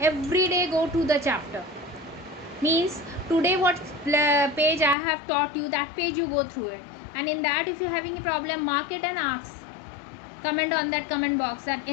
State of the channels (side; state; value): right; drops out; at 5.0 s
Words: every day go to the chapter. Means today what page I have taught you, that page you go through it, and in that if you're having a problem, mark it and ask, comment on that comment box that